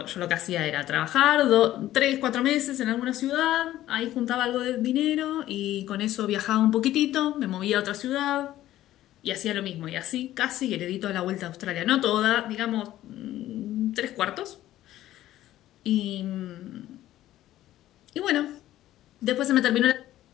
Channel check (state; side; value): quieter; right; 14.0 dB